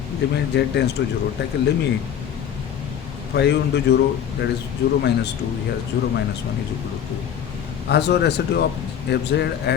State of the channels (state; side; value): quieter; right; 9.1 dB